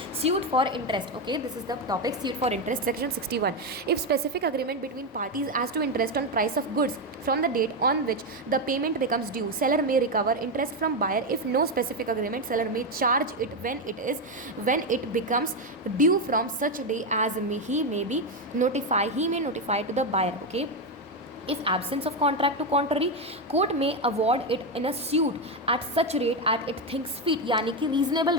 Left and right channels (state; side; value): normal; both; correlation 0.09